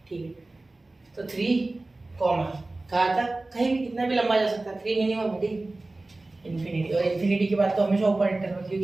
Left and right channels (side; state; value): left; quieter; 3.0 dB